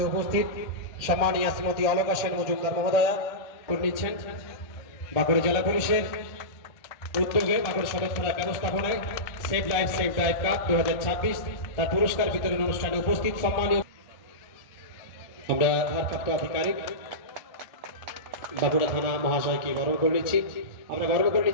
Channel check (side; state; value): right; late; 1.7 ms